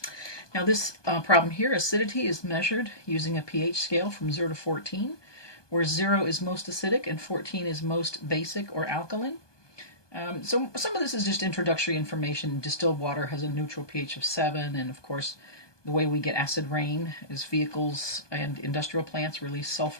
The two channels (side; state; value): right; late; 1.2 ms